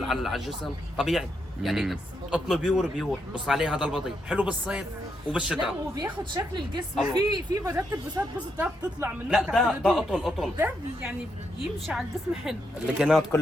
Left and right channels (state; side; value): normal; both; correlation 0.80